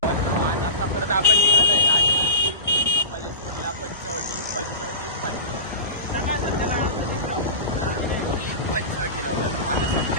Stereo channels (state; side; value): inverted; both; correlation -0.31